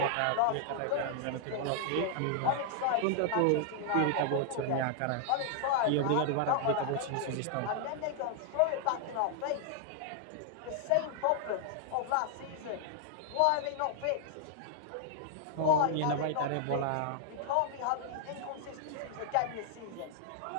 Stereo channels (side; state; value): both; different; correlation 0.00